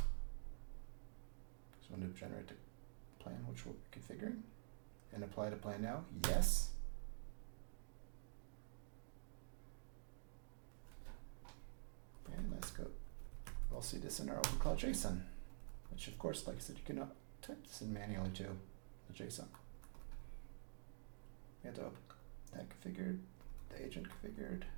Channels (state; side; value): silent; left; digital silence